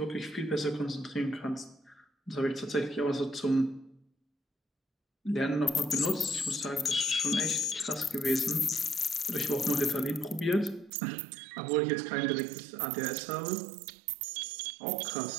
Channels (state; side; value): drops out; left; at 10.9 s